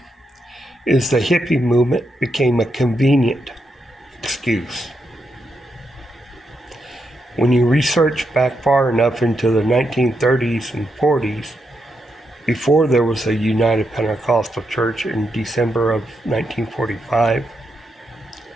is the hippie movement became a convenient excuse. When you research back far enough into the 1930s and 40s, before there was a United Pentecostal Church in December of 1945,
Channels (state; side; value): normal; both; correlation 0.82